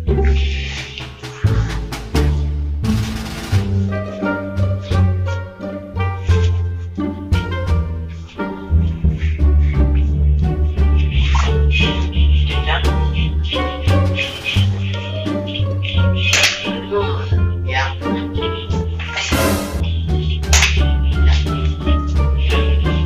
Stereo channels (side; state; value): both; identical; correlation 1.00